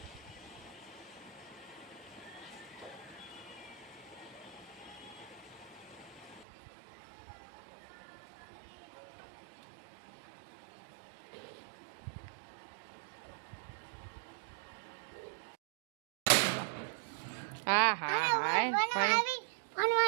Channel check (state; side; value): drops out; left; at 6.5 s